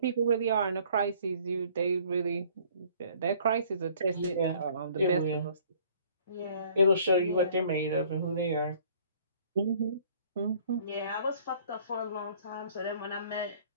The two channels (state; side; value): inverted; both; correlation -0.56